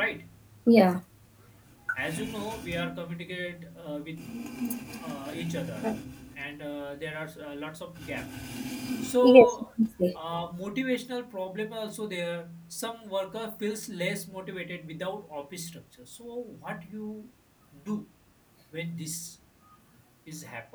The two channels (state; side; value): identical; both; correlation 1.00